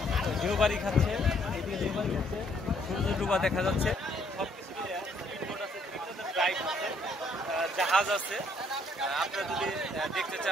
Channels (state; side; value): normal; both; correlation 0.67